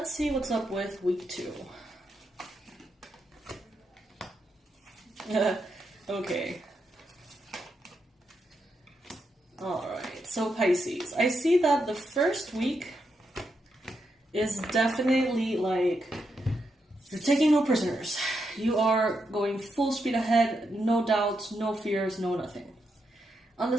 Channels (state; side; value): normal; both; correlation 0.83